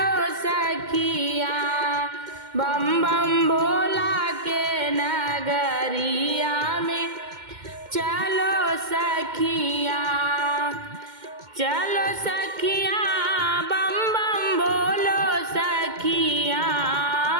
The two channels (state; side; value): late; left; 2.1 ms